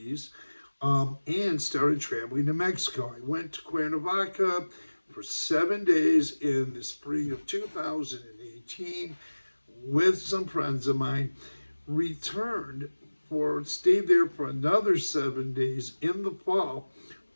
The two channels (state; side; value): inverted; both; correlation -1.00